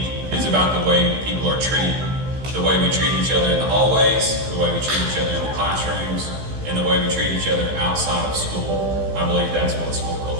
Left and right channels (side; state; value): left; late; 15 ms